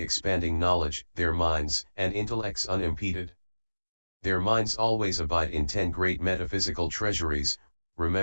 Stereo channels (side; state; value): both; inverted; correlation -1.00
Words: expanding knowledge, their minds and intellects unimpeded. Their minds always abide in 10 great metaphysical treasuries,